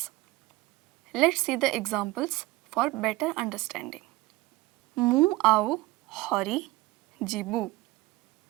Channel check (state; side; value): quieter; left; 19.3 dB